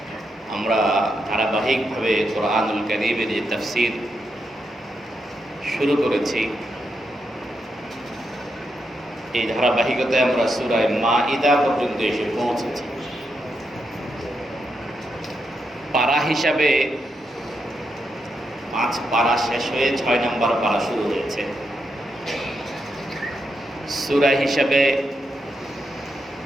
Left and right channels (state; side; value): normal; both; correlation 0.83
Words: আমরা ধারাবাহিকভাবে কোরআনুল কারীমের যে তাফসীর শুরু করেছি, এই ধারাবাহিকতায় আমরা সূরা মাঈদা পর্যন্ত এসে পৌঁছেছি। পারা হিসাবে 5 পারা শেষ হয়ে 6 নম্বর পারা শুরু হয়েছে। সূরা হিসাবে